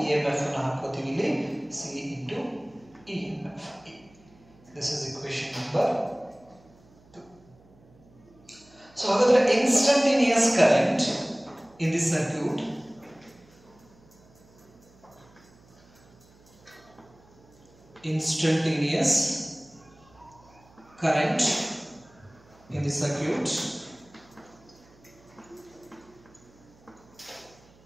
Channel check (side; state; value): right; noise; hum, 27 dB below the sound